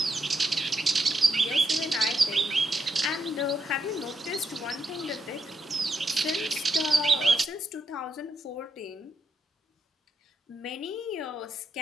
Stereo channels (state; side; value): normal; both; correlation 0.81